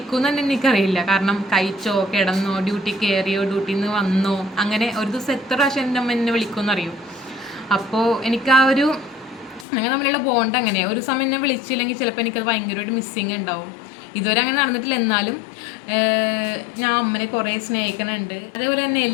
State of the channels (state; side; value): drops out; right; at 9.7 s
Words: തന്നെ എനിക്കറിയില്ല. കാരണം കഴിച്ചോ, കിടന്നോ, ഡ്യൂട്ടി കയറിയോ, ഡ്യൂട്ടിയിൽ നിന്ന് വന്നോ, അങ്ങനെ ഒരു ദിവസം എത്ര പ്രാവശ്യം എൻ്റെ അമ്മ എന്നെ വിളിക്കുമെന്ന് അറിയും. അപ്പോൾ എനിക്ക് ആ ഒരു അങ്ങനെ നമ്മളുള്ള ബോണ്ട് അങ്ങനെ ഒരു സമയം എന്നെ വിളിച്ചില്ലെങ്കിൽ ചിലപ്പോൾ എനിക്കത് ഭയങ്കരമായിട്ട് മിസ്സിങ് ഉണ്ടാവും. ഇതുവരെ അങ്ങനെ നടന്നിട്ടില്ല. എന്നാലും ഞാൻ അമ്മനെ കുറേ സ്നേഹിക്കുന്നുണ്ട്. അതേപോലെ തന്നെ